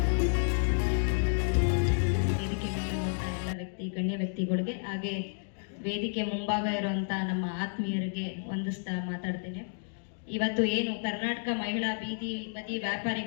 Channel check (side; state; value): right; silent; digital silence